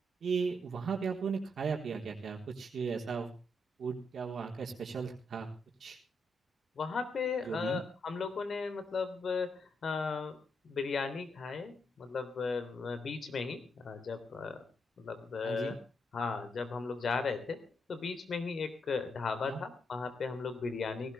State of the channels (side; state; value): both; normal; correlation 0.79